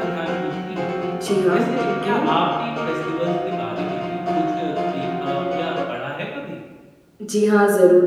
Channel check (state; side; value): identical; both; correlation 1.00